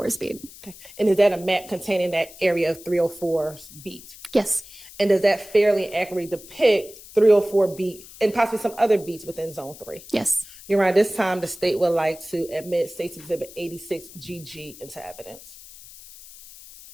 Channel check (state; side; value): noise; left; hiss, 18 dB below the sound